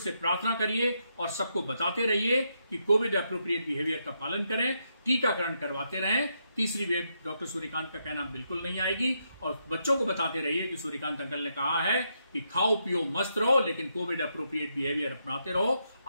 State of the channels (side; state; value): both; inverted; correlation -0.80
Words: प्रार्थना करिए और सबको बताते रहिए कि कोविड एप्रोप्रिएट बिहेवियर का पालन करें, टीकाकरण करवाते रहें। तीसरी वेव डॉक्टर सूर्यकांत का कहना बिल्कुल नहीं आएगी। और बच्चों को बताते रहिए कि सूर्यकांत अंकल ने कहा है कि खाओ पियो मस्त रहो, लेकिन कोविड एप्रोप्रिएट बिहेवियर अपनाते रहो,